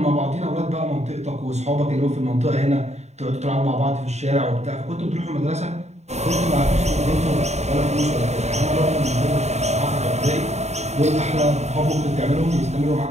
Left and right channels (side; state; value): left; late; 0.32 ms